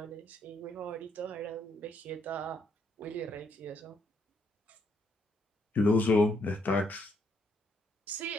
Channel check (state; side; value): normal; both; correlation 0.73